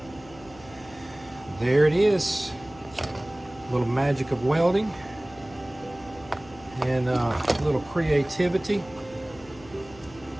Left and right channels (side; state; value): left; noise; hum, 21 dB below the sound